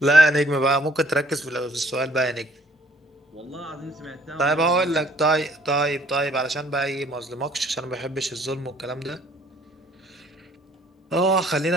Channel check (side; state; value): both; normal; correlation 0.59